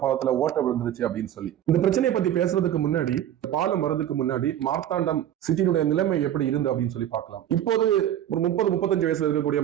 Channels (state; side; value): quieter; left; 11.2 dB